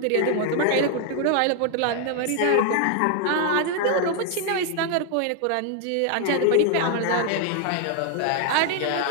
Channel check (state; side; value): different; both; correlation 0.00